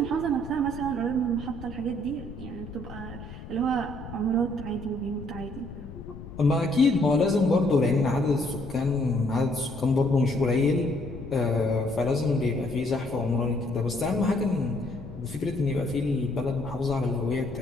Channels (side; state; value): left; noise; rumble, 13 dB below the sound